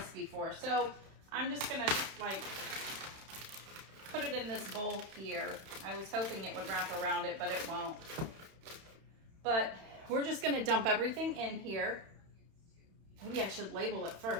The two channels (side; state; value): left; late; 31 ms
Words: before. So I'm just gonna like put it in this bowl here. I was hoping it would wrap around it, but it won't. But we're just gonna dump everything in here. Maybe I should label it